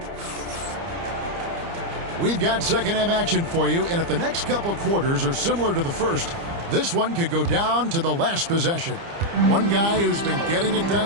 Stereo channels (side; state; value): left; late; 30 ms